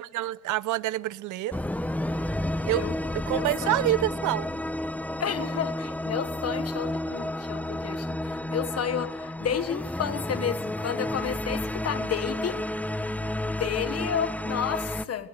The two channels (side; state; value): both; normal; correlation 0.37